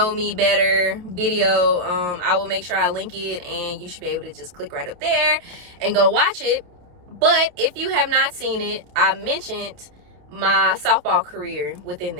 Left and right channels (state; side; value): late; left; 28 ms